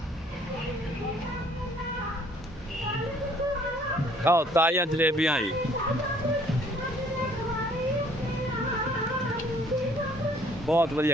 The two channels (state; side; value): normal; both; correlation 0.59